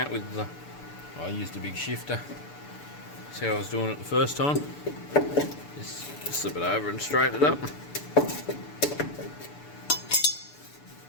with the. I used a big shifter. See how I was doing it the first time. Just slip it over and straighten it up.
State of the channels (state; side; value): late; right; 6.9 ms